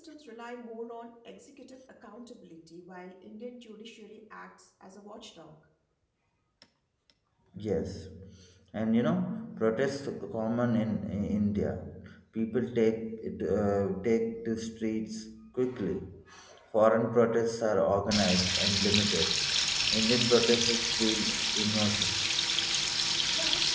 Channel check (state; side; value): identical; both; correlation 1.00